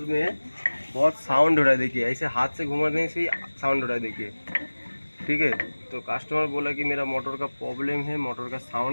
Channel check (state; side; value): inverted; both; correlation -1.00